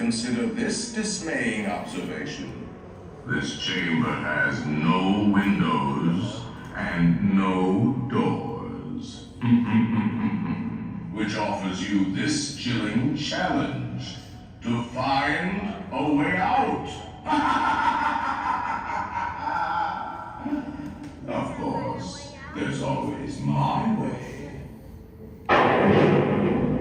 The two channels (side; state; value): both; identical; correlation 1.00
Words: this dismaying observation. This chamber has no windows and no doors. Which offers you this chilling challenge to find a way out. Of course, there's always my way.